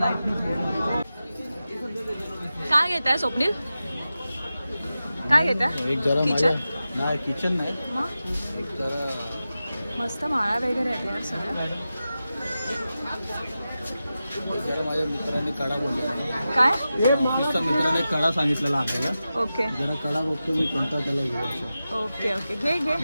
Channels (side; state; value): both; inverted; correlation -0.93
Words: काय घेत आहे स्वप्नील? काय घेता एक जरा किचन माझ्या नाही किचन नाही मग एक जरा मस्त माळा वगैरे आहेत यार सगळं. जरा माझ्या मित्राने कडा बोललेला काय ऑफिसच्या मित्राने कडा सांगितलेला आपल्याला ओके जरा कडा बघतो मी कोणता त्याला घेऊ असं ओके ओके घे घे